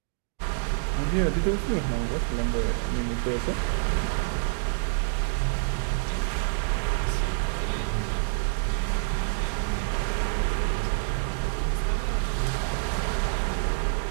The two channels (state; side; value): silent; left; digital silence